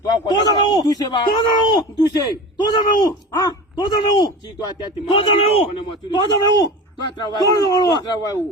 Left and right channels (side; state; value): both; normal; correlation 0.32